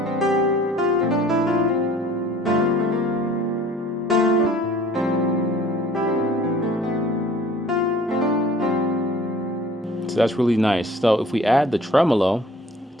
So that's really nice. So if we add the tremolo, it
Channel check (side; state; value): both; normal; correlation 0.51